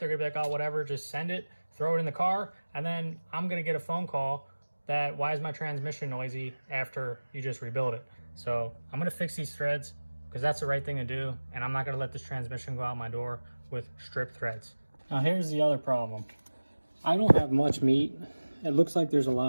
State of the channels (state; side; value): inverted; both; correlation -1.00